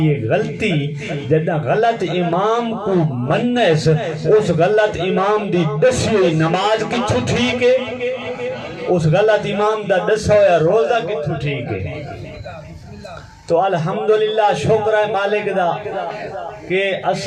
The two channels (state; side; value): identical; both; correlation 1.00